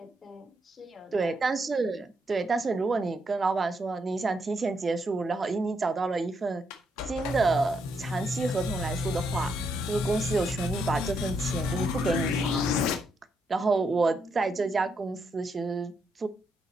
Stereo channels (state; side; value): normal; both; correlation 0.78